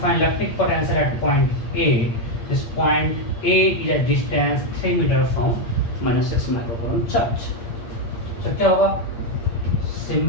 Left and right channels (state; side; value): late; right; 8.7 ms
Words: electric potential at point A. This point A is at distance 3 metre from -6 microcoulomb charge. तो क्या होगा?